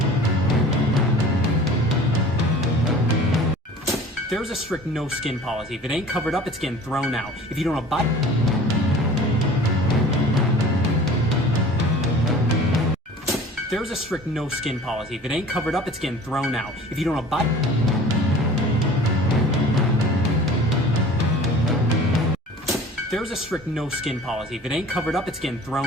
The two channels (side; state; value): both; normal; correlation 0.44